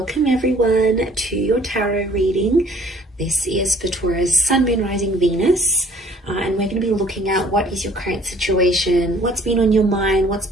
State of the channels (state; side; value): normal; both; correlation 0.57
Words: everyone to your tarot reading. This is for Taurus, Sun, Moon, Rising, Venus. And we're going to be looking at what is your current situation, what's been on your mind, what's